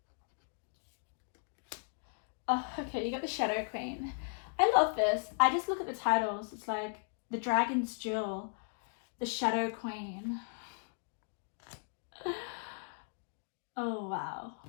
Oh, okay, you got the Shadow Queen. I love this. I just look at the titles. It's like the Dragon's Jewel, the Shadow Queen. Oh, wow.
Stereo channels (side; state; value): right; silent; digital silence